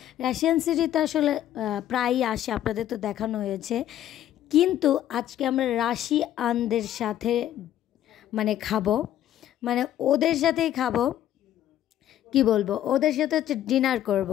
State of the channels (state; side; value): quieter; right; 12.0 dB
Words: সিটিতে আসলে প্রায়ই আসে, আপনাদের তো দেখানো হয়েছে। কিন্তু আজকে আমরা রাশিয়ানদের সাথে খাবো, ওদের সাথেই খাবো, কি বলবো, ওদের সাথে হচ্ছে ডিনার করব।